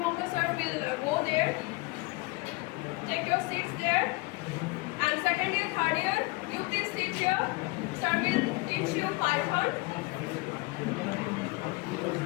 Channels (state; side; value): quieter; right; 24.4 dB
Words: sir will go there. Take your seats there. And second year, third year, you please sit here. Sir will teach you Python.